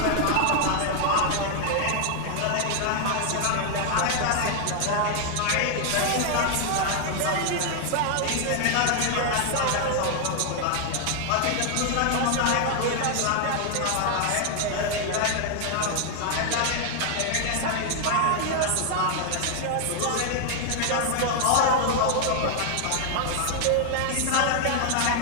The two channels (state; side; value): different; both; correlation 0.00